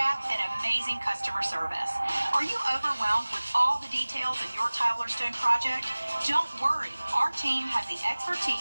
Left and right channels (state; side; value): inverted; both; correlation -1.00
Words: and amazing customer service. Are you overwhelmed with all the details in your tile or stone project? Don't worry, our team has the